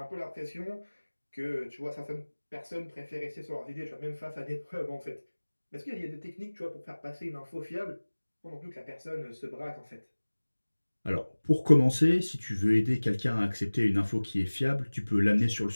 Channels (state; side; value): inverted; both; correlation -1.00